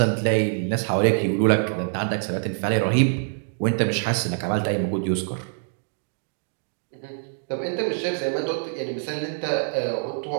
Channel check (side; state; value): left; silent; digital silence